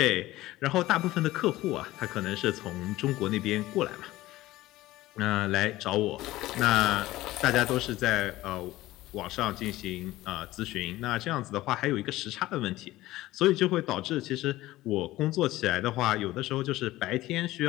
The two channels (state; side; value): quieter; right; 16.9 dB